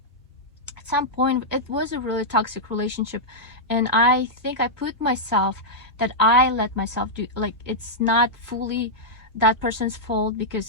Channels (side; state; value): both; normal; correlation -0.07